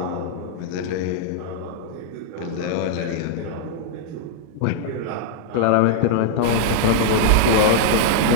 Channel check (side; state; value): both; different; correlation -0.01